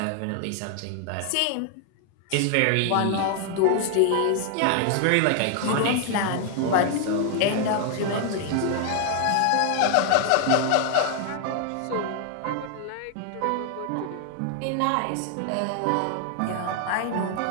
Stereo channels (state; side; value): different; both; correlation 0.00